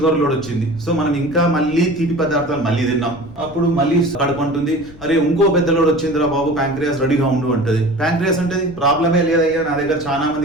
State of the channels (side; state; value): left; noise; rumble, 19 dB below the sound